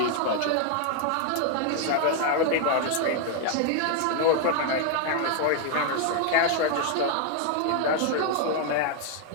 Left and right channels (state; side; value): different; both; correlation 0.00